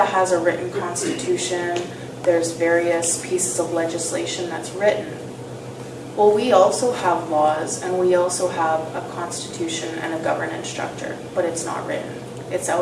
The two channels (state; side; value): identical; both; correlation 1.00